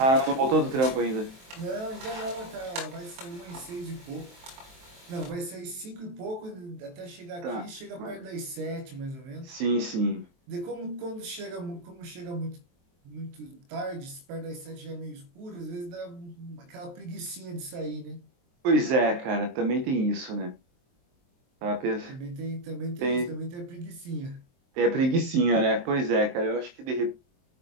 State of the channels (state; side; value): late; left; 23 ms